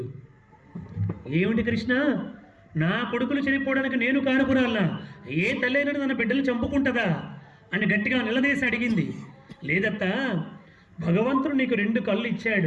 ఏమిటి కృష్ణ, నా కొడుకులు చనిపోవడానికి నేను కారకురాలా? ఏ తల్లైనా తన బిడ్డలు చంపుకుంటుందా అని గట్టిగా నిలదీసి అడిగింది. లేదత్తా, భగవంతుడు నీకు 2 కళ్ళు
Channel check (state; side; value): identical; both; correlation 1.00